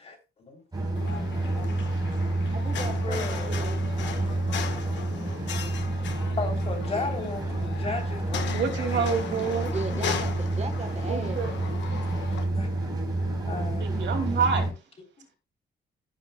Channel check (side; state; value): both; normal; correlation 0.64